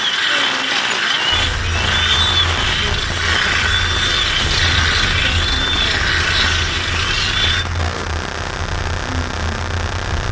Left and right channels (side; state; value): both; identical; correlation 1.00